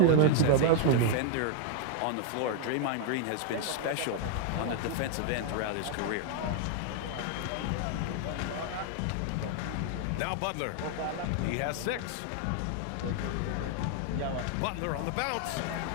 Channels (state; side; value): different; both; correlation 0.00